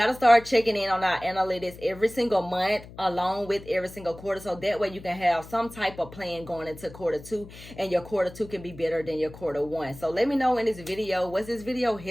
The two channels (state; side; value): noise; left; hum, 17 dB below the sound